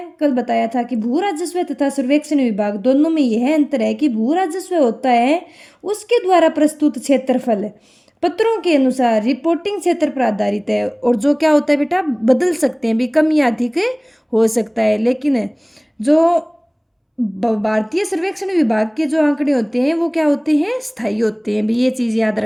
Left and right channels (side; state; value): both; identical; correlation 1.00